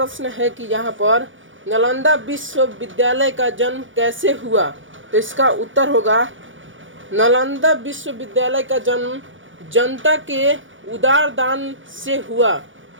है कि यहाँ पर नालंदा विश्वविद्यालय का जन्म कैसे हुआ? तो इसका उत्तर होगा, नालंदा विश्वविद्यालय का जन्म जनता के उदार दान से हुआ।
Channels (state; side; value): late; left; 0.56 ms